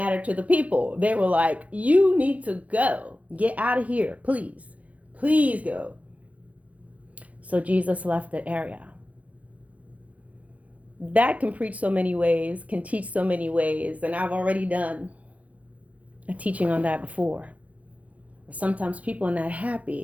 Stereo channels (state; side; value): late; left; 0.069 ms